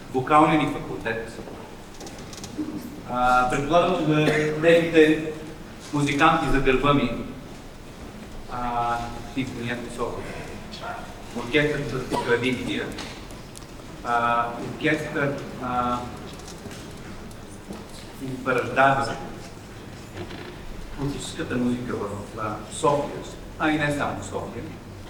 вокалния ни факултет. Предполагам, че за техните музиканти за гърба ми, Симфонията София, оркестър за традиция, оркестър Бараждава, класическата музика в София, и не само в София.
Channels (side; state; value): both; identical; correlation 1.00